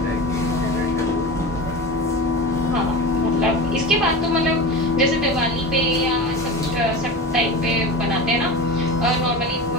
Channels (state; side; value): normal; both; correlation 0.28